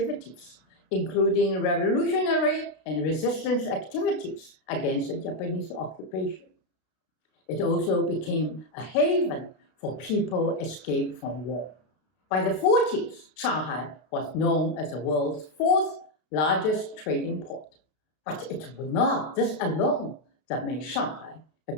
including revolutionary and resistance activities against the Japanese occupation. It also became a haven for people escaped from war. By the 40s, Shanghai was known as the world's 4th largest trading port. But it was not this alone that made Shanghai a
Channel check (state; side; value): late; right; 32 ms